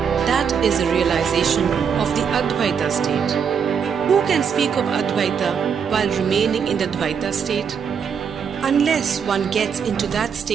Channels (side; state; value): left; quieter; 6.9 dB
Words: That is a realization of the Advaita state. Who can speak of Advaita while remaining in the Dvaita state? Unless one gets into that